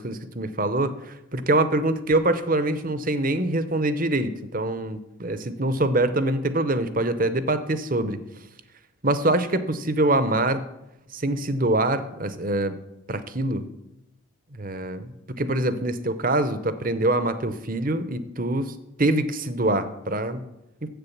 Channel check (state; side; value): normal; both; correlation 0.28